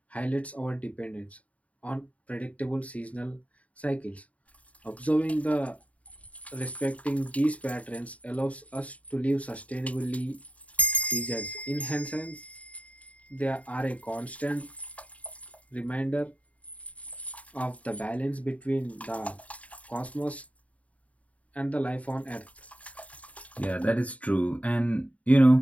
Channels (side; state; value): right; late; 0.068 ms